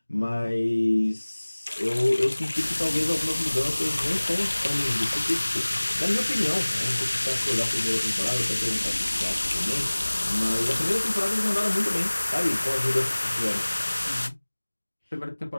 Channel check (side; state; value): both; inverted; correlation -1.00